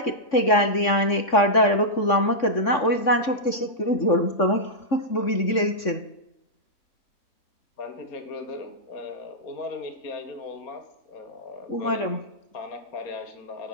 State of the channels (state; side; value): late; right; 3.6 ms